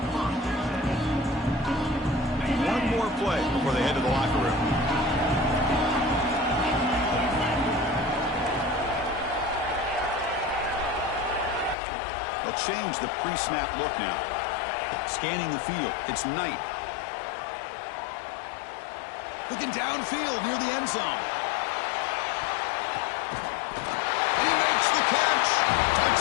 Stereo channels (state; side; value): drops out; right; at 11.8 s